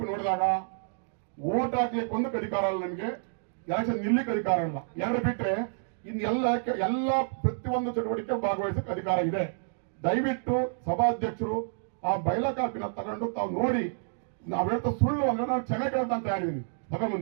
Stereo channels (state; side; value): silent; left; digital silence